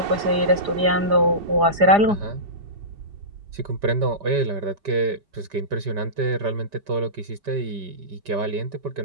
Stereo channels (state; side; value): late; left; 4.9 ms